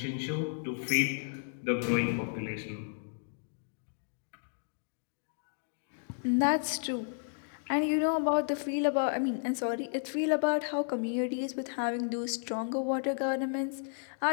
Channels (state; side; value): silent; right; digital silence